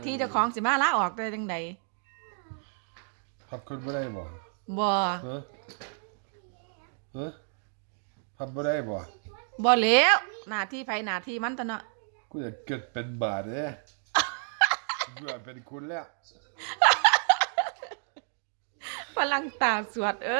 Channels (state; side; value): silent; left; 58 dB below the other